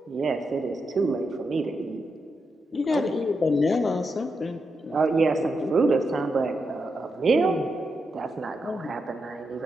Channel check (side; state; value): both; normal; correlation 0.85